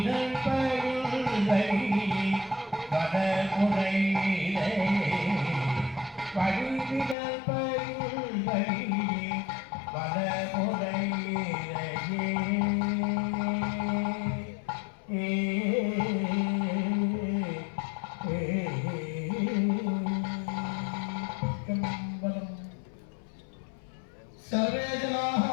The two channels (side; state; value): right; drops out; at 7.2 s